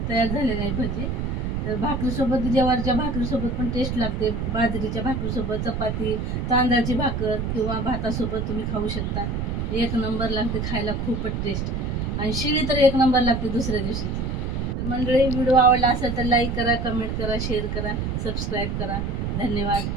तयार झालेली आहे भजी. तर भाकरीसोबत, ज्वारीच्या भाकरीसोबत पण टेस्ट लागते. बाजरीच्या भाकरीसोबत, चपाती, तांदळाची भाकर किंवा भातासोबत तुम्ही खाऊ शकता. एक नंबर लागते खायला, खूपच टेस्ट. आणि शिळी तर एक नंबर लागते दुसऱ्या दिवशीची. तर मंडळी, व्हिडिओ आवडला असेल तर लाईक करा, कमेंट करा, शेअर करा, सबस्क्राईब करा. धन्यवाद.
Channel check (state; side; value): noise; right; rumble, 2 dB below the sound